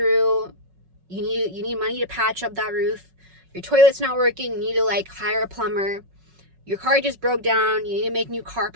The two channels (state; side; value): late; left; 5.4 ms